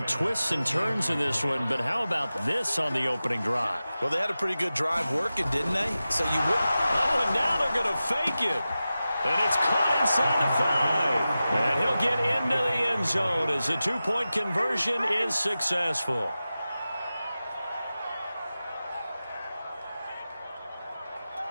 twists and turns in this one, but how about this on the opening drive? Well, they had a pretty good drive working, didn't they? So you wouldn't. Oh, and now they're going to fake it. And it's caught inside the 5. And he'll get into the end zone as the two-point conversion is successful.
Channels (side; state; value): both; inverted; correlation -0.94